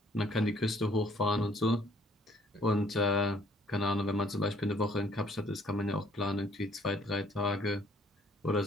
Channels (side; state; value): both; normal; correlation 0.62